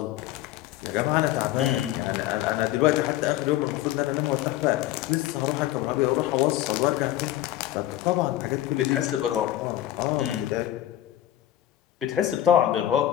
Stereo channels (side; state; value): right; quieter; 13.5 dB